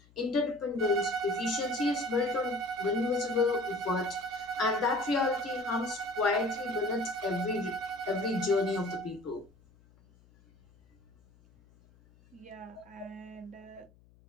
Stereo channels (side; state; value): left; noise; hum, 28 dB below the sound